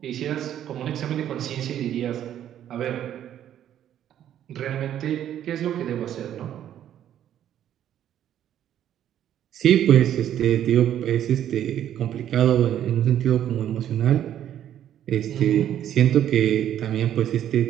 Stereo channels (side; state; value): left; quieter; 10.8 dB